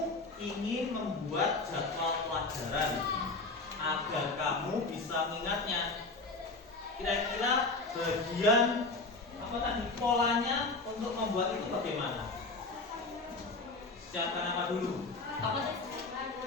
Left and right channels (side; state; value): right; quieter; 3.5 dB